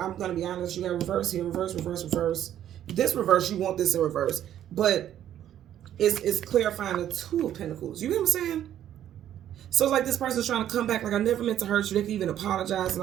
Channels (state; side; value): quieter; left; 11.1 dB